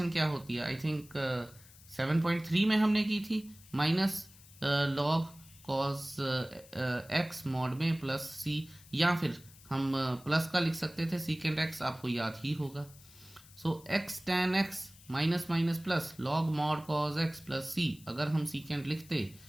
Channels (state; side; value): noise; left; hiss, 22 dB below the sound